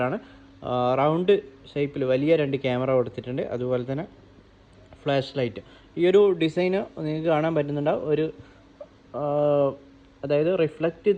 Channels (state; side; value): identical; both; correlation 1.00